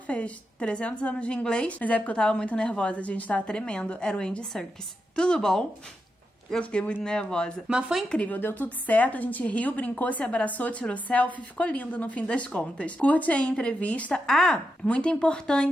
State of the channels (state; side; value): normal; both; correlation 0.86